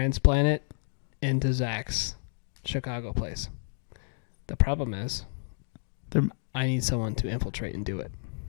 it into Zach's Chicago place. The problem is, They're- I need someone to infiltrate and do it.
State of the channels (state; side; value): silent; right; digital silence